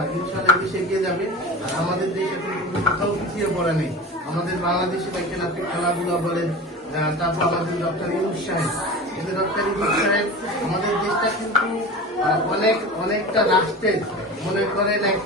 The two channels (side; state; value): both; normal; correlation 0.32